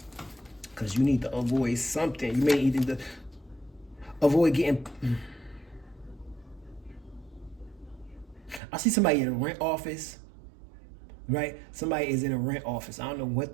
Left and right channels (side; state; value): left; drops out; at 8.6 s